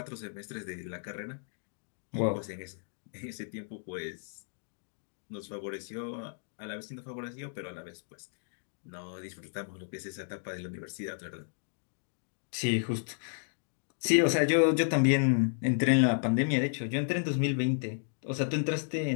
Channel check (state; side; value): silent; right; digital silence